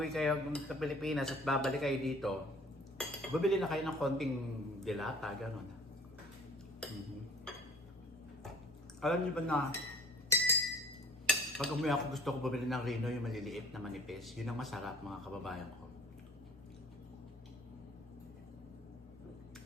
kayo sa Pilipinas at babalik kayo dito, bibili na kayo ng konting dilata, gano'n. Alam niyo ba na, pag umuwi ako gusto ko bumili ng Rino, yung maliliit na manipis. Yun ang masarap, mga kababayan ko.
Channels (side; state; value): both; normal; correlation 0.51